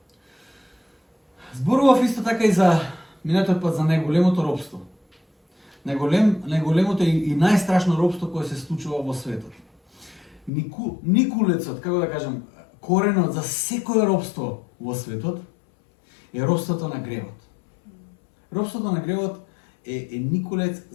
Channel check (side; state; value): right; drops out; at 10.5 s